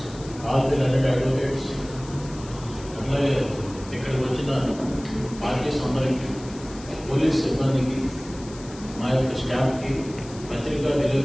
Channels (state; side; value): noise; left; hiss, 19 dB below the sound